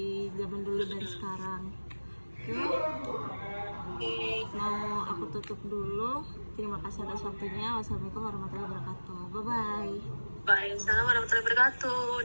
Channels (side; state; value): both; inverted; correlation -1.00